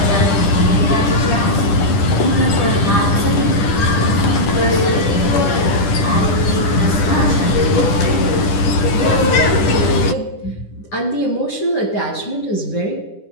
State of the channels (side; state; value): right; late; 10 ms